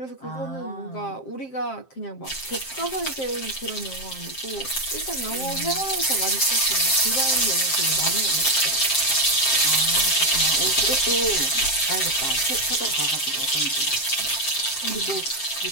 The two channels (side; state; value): right; late; 7.6 ms